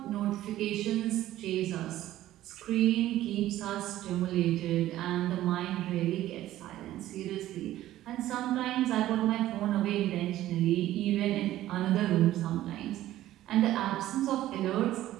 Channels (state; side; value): quieter; left; 14.2 dB